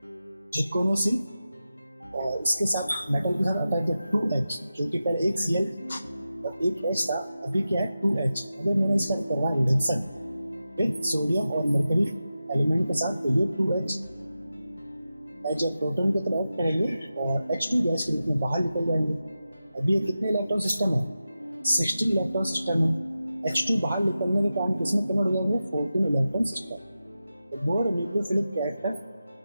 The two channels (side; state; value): both; inverted; correlation -0.92